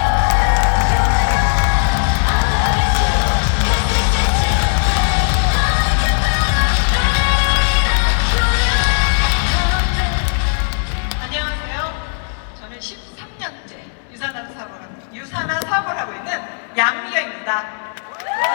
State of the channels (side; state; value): right; silent; 64 dB below the other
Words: 안녕하세요. 저는 13년째 유산화 사업을 하고 있는 양미경입니다.